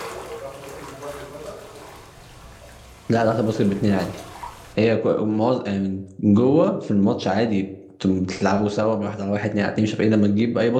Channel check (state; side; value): identical; both; correlation 1.00